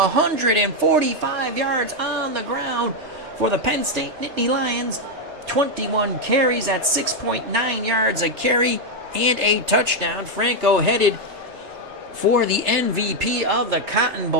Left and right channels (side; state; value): left; late; 3.4 ms